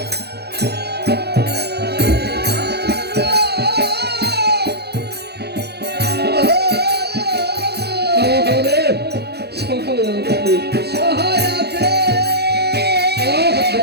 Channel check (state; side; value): late; left; 0.48 ms